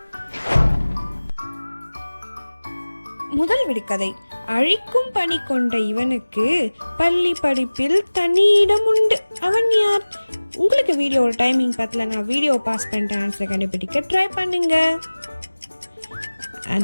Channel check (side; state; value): both; inverted; correlation -1.00